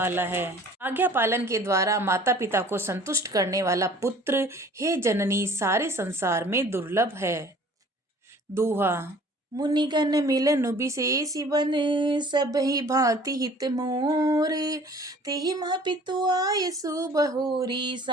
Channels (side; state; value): both; normal; correlation 0.50